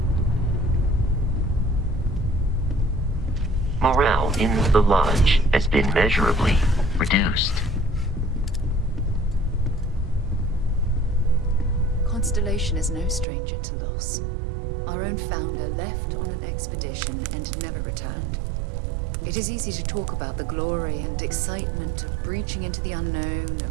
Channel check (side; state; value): left; drops out; at 13.2 s